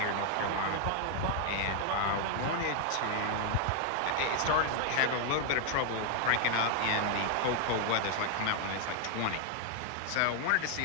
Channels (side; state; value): both; different; correlation 0.00